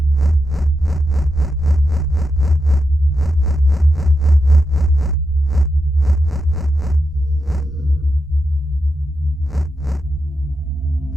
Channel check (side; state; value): both; normal; correlation 0.87